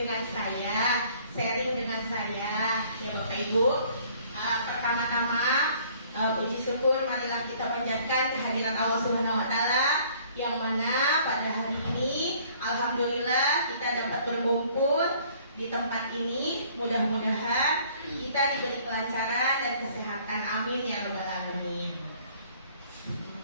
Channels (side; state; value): both; inverted; correlation -0.57